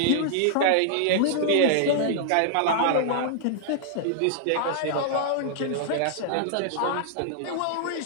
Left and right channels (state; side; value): different; both; correlation -0.01